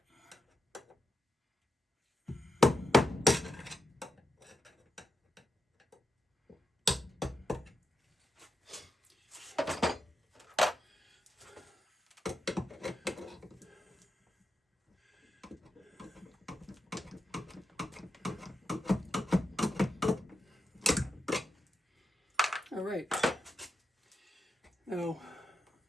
All right. Now,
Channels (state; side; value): normal; both; correlation 0.86